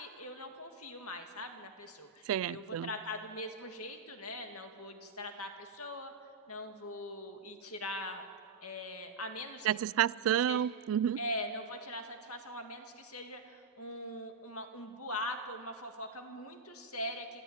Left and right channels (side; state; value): left; quieter; 5.0 dB